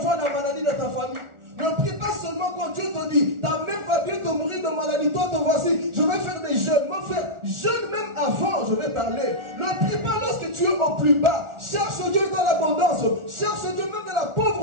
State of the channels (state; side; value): late; left; 1.4 ms